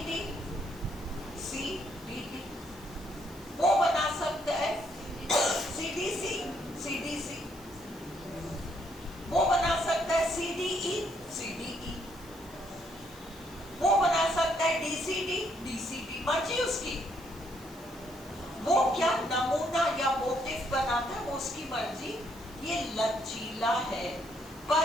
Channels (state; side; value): noise; right; hiss, 22 dB below the sound